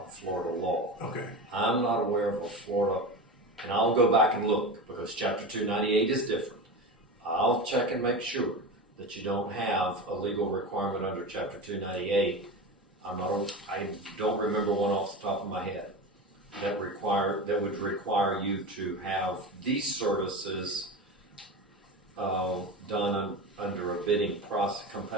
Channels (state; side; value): normal; both; correlation 0.26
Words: Florida law. Okay. I'm not aware of a Florida, and I'll go back and look, because Chapter 298 is different. I'll check and make sure that you don't have a legal requirement under Chapter 298. I don't remember one off the top of my head that would require you to have these services done under a bidding process,